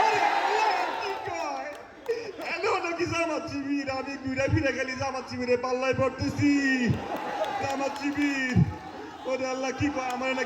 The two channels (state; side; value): identical; both; correlation 1.00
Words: আরে আল্লাহ, কি কয়? এনো নাকি জামাত শিবির? আমি ঘুরে ফিরে গেলি জামাত শিবিরে পাল্লায় পড়তেছি। জামাত শিবির, ওরে আল্লাহ, কি কয়? আমার